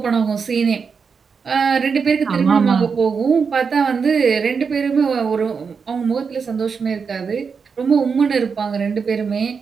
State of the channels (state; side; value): quieter; left; 5.7 dB